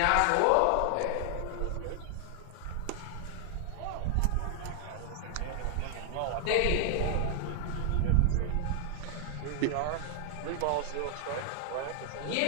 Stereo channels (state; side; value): different; both; correlation 0.00